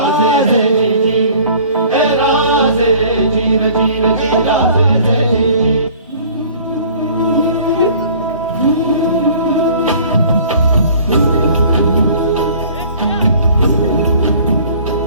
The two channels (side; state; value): both; inverted; correlation -0.50